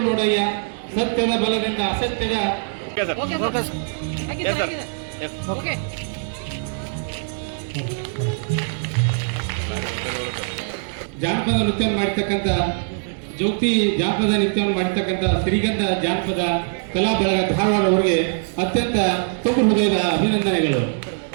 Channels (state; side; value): silent; left; digital silence